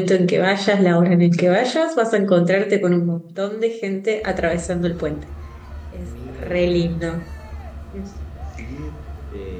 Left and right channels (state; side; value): identical; both; correlation 1.00